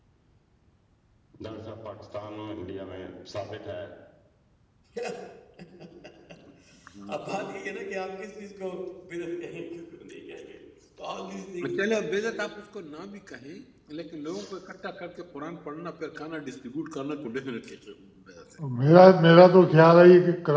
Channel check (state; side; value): identical; both; correlation 1.00